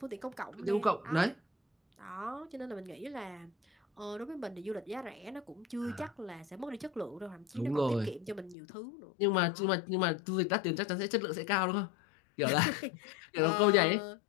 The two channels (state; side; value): drops out; right; at 8.6 s